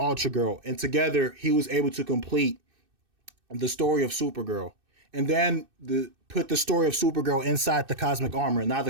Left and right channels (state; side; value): late; left; 2.6 ms